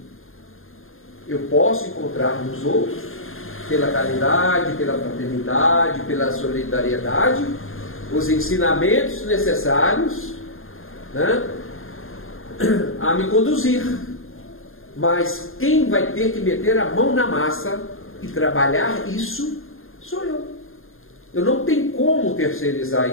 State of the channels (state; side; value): late; right; 0.60 ms